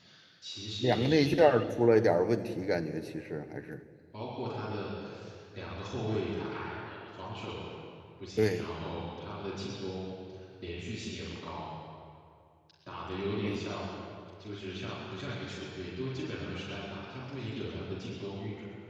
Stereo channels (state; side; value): identical; both; correlation 1.00